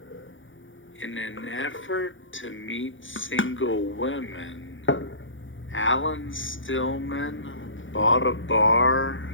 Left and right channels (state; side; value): late; right; 0.56 ms